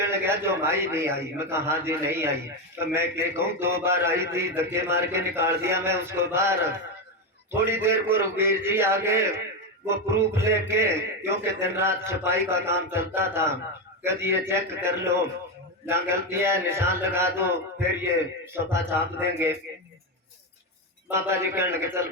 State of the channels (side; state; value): both; normal; correlation 0.11